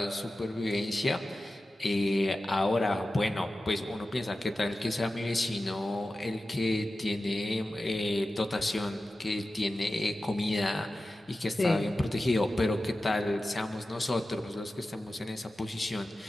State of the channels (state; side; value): normal; both; correlation 0.94